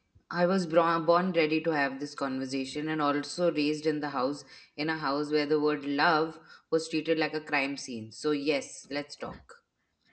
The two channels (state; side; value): identical; both; correlation 1.00